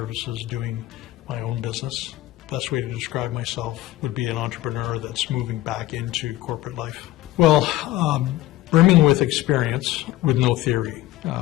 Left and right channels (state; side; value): quieter; right; 15.9 dB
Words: doing my own business. Best way to describe myself would be an entrepreneur that's moving back into corporate life. Well, brimming with experience with no theory